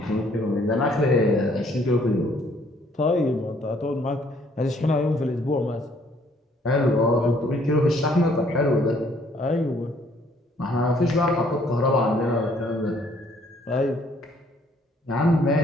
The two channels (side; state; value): both; normal; correlation 0.63